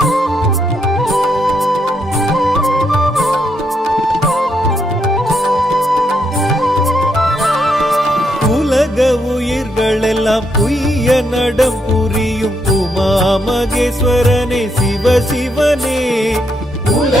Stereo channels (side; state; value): both; normal; correlation 0.78